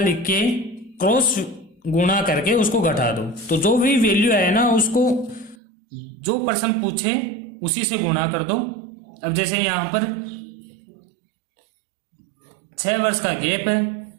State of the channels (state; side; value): drops out; left; at 5.6 s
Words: के क्रॉस गुणा करके उसको घटा दो, तो जो भी वैल्यू आए ना, उसको जो प्रश्न पूछे उसी से गुणा कर दो। अब जैसे यहां पर 6 वर्ष का गैप है,